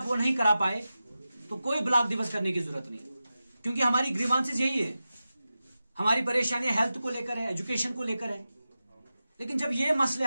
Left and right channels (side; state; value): both; inverted; correlation -0.93